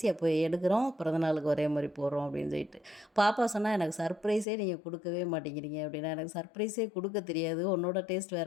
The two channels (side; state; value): right; drops out; at 4.5 s